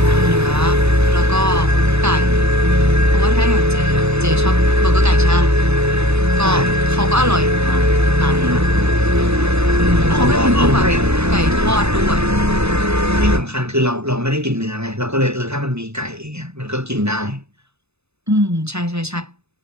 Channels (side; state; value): left; late; 0.80 ms